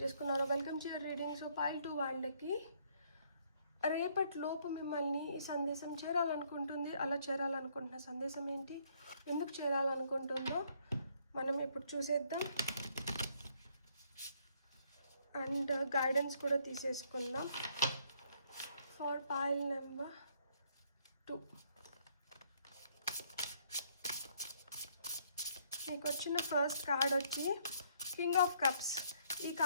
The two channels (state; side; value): inverted; both; correlation -0.67